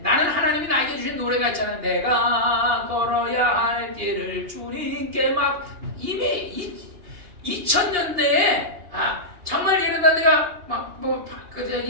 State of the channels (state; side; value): late; left; 2.9 ms